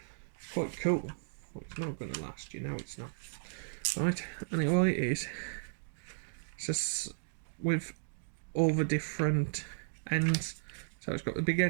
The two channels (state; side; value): silent; left; digital silence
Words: It's quite cool, but it's not going to last. You know it's not. Right, anyway, it is. It's just with all the different ends. So it's got the big